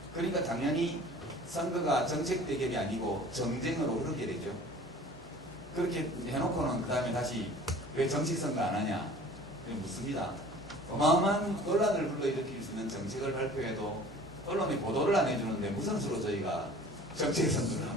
그러니까 당연히 선거가 정책 대결이 아니고 정쟁으로 흐르게 되죠. 그렇게 해놓고는 그 다음에 다시 왜 정식 선거 안 하냐 묻습니다. 어마어마한 논란을 불러일으킬 수 있는 정책을 발표해도 언론이 보도를 안 해주는데 무슨 수로 저희가 정책 선거를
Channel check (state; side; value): normal; both; correlation 0.46